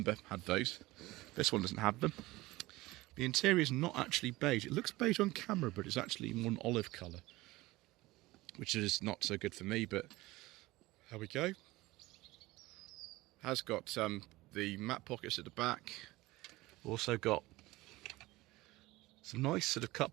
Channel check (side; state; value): left; quieter; 19.6 dB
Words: had those. This one doesn't have them. The interior is not actually beige. It looks beige on camera, but it's actually more an olive colour, which is not so good for me, but there we go. Has got the mat pockets at the back. Also got some nice sort of